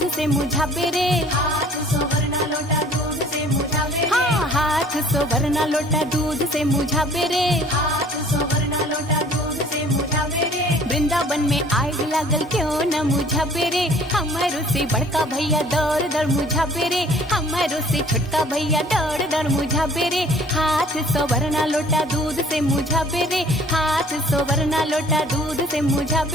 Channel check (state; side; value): normal; both; correlation 0.53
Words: से मुझावे रे, हाथ सोवरना लोटा दूध से मुझावे रे, हाँ हाथ सोवरना लोटा दूध से मुझावे रे। हाथ सोवरना लोटा दूध से मुझावे रे। वृंदावन में आग लागल क्यों न मुझा पेरे, हमारो से बड़का भैया दौड़ दौड़ मुझा पेरे, हमारो से छोटका भैया दौड़ दौड़ मुझा पेरे। हाथ सोवरना लोटा दूध से मुझा पेरे, हाथ सोवरना लोटा दूध से मुझा